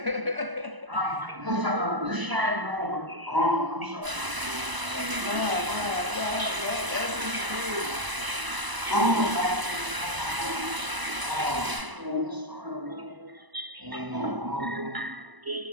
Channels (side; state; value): left; late; 1.0 ms